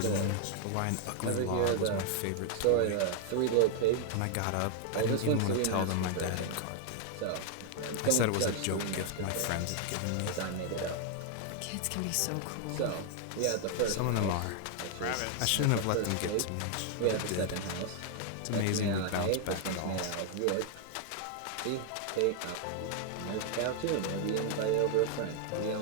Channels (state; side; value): different; both; correlation 0.00